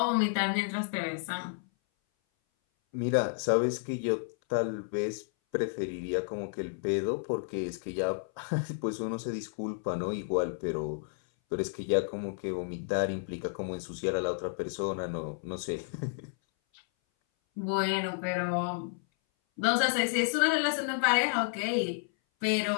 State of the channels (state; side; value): silent; right; 57 dB below the other